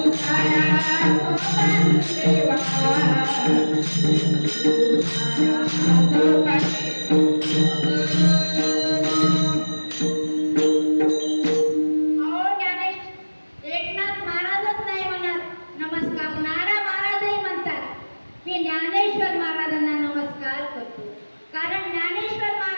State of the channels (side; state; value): both; inverted; correlation -1.00